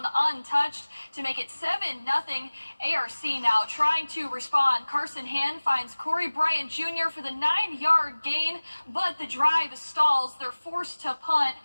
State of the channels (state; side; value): inverted; both; correlation -1.00